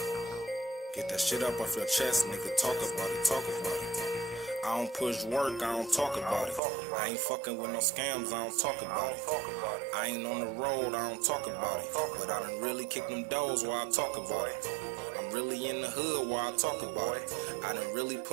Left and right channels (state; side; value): drops out; left; at 6.6 s